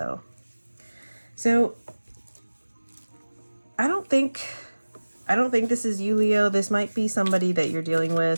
So I don't think this is you, Leo. This might be somebody that you're dealing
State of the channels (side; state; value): both; inverted; correlation -1.00